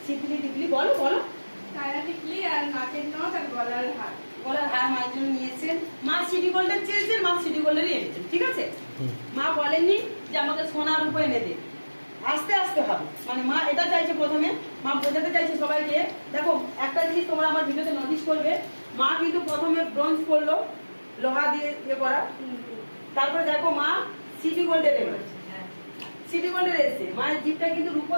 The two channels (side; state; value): both; inverted; correlation -1.00